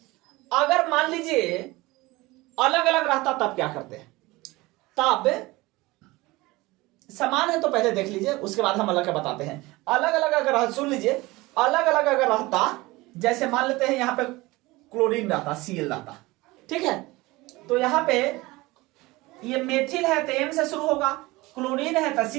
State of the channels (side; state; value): left; quieter; 21.1 dB